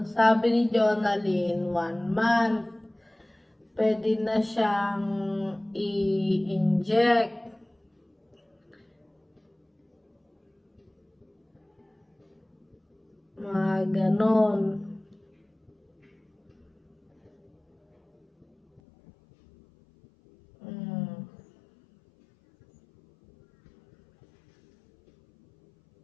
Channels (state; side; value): drops out; right; at 18.8 s